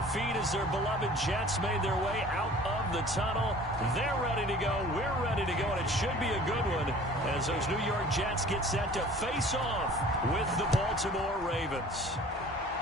feet as their beloved Jets made their way out of the tunnel. They're ready to go. We're ready to go, and it should be a good one as those New York Jets get set to face off with the Baltimore Ravens.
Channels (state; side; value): normal; both; correlation 0.47